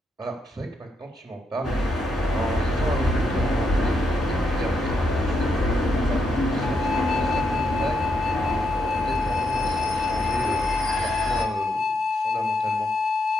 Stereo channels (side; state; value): both; normal; correlation 0.80